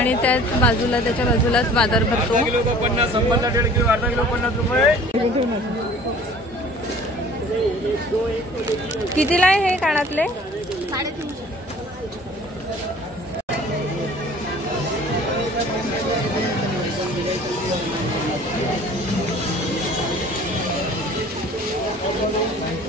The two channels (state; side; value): normal; both; correlation 0.48